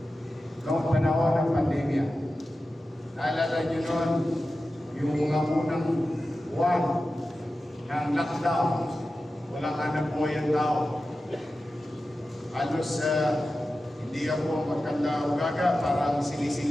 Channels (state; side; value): normal; both; correlation 0.93